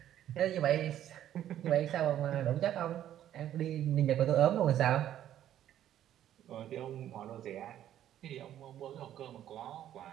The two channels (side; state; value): left; quieter; 11.5 dB